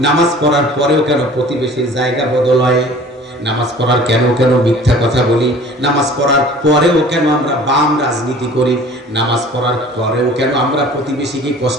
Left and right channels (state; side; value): normal; both; correlation 0.47